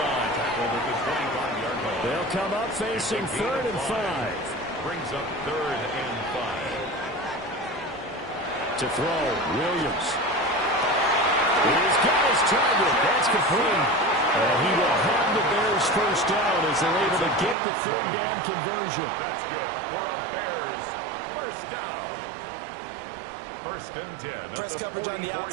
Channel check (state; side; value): drops out; left; at 17.6 s